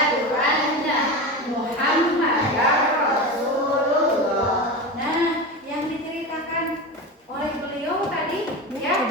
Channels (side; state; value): both; normal; correlation 0.24